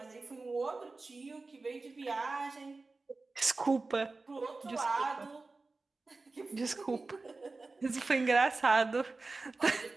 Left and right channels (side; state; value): left; quieter; 3.6 dB